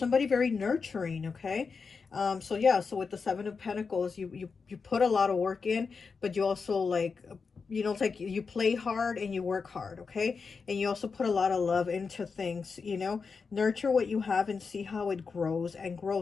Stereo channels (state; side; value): quieter; right; 5.1 dB